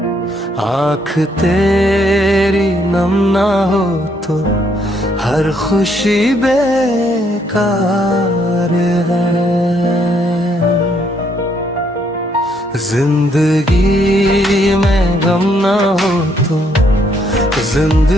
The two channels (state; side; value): normal; both; correlation 0.71